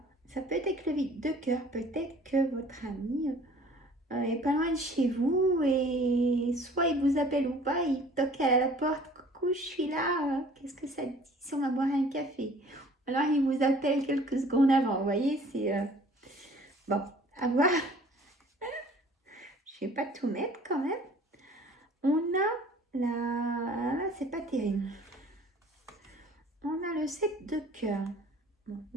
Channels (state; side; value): normal; both; correlation 0.51